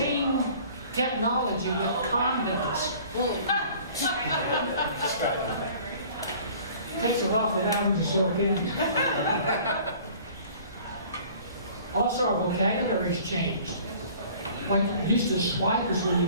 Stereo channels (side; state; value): both; inverted; correlation -0.49